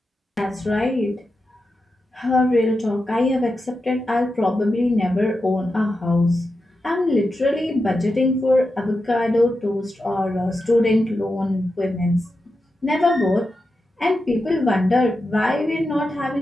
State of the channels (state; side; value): normal; both; correlation 0.89